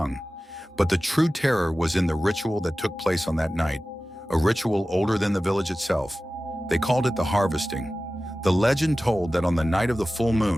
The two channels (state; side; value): normal; both; correlation 0.96